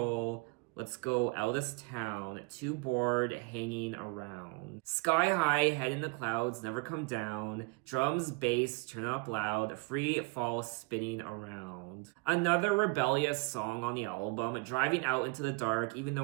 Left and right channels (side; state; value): left; quieter; 30.0 dB